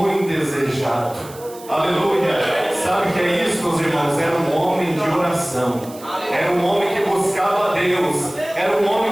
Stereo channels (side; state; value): right; noise; hiss, 19 dB below the sound